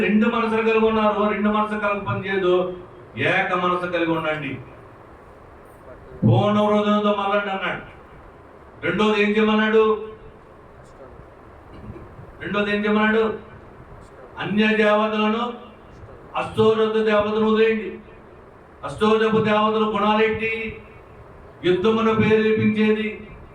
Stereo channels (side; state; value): both; identical; correlation 1.00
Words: 2 మనసులు కలిగి ఉన్నారు. 2 మనసులు కలిగి పనిచేయదు, ఏక మనసు కలిగి ఉండండి. పూర్ణ హృదయంతో మరలండి అన్నాడు. రెండోది ఏం చేయమన్నాడు? అన్య దేవతలను, అష్టోరథ దేవతను వదిలేయండి. అష్టోరథ దేవతల గుణాలేంటి? యుద్ధమును ప్రేరేపించేది,